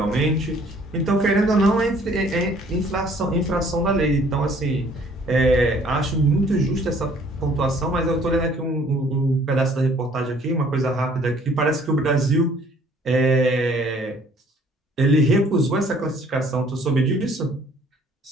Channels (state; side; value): normal; both; correlation 0.58